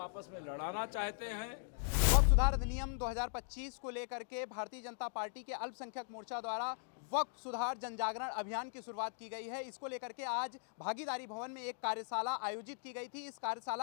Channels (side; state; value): right; silent; digital silence